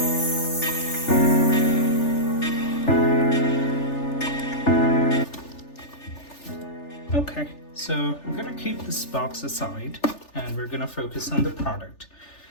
Okay, so I'm gonna keep this box aside and we're gonna focus on the product.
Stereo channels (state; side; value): late; right; 3.4 ms